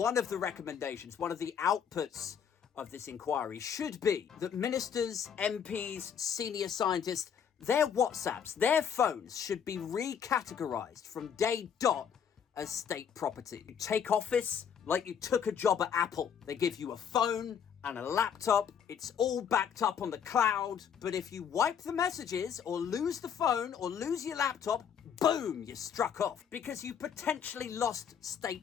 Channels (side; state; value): right; quieter; 7.8 dB